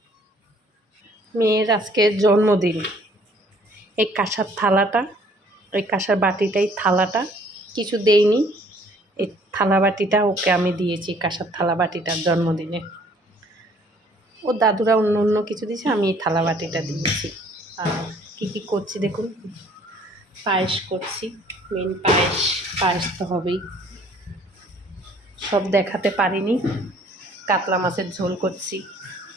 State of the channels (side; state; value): both; normal; correlation 0.58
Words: মেয়ের আজকে জন্মদিন। এই কাঁসার থালাটা, ওই কাঁসার বাটিটাই থালাটা, কিছু দেইনি। এই থালা বাটিটা ওকে আমি দিয়েছি, কাঁসার থালা বাটিটার জন্মদিনে। ও দাদুরা অন্য অন্য কিছু দিয়েছে, আমি এই থালা বাটিটা দিয়েছি। আর কী করছি দেখুন, পায়েস করছি। মেন পায়েস তো হবেই। সব দেখাতে পারিনি। কাতলা মাছের ঝোল করছি,